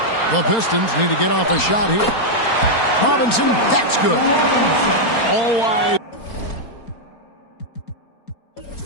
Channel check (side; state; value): right; late; 4.3 ms